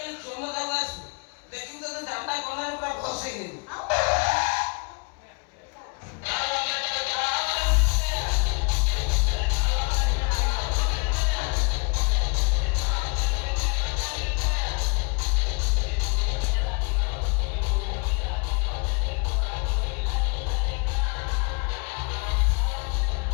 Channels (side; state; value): right; quieter; 33.0 dB